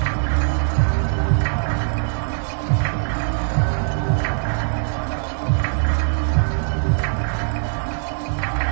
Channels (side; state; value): left; silent; 57 dB below the other